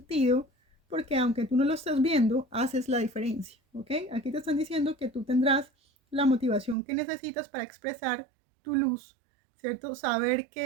porque aunque tú no lo estés viendo, haces la diferencia, ¿ok? Aquí te están diciendo que tú tendrás la motivación que necesitas para expresar tu luz, ¿cierto? Saber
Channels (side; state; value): left; drops out; at 6.8 s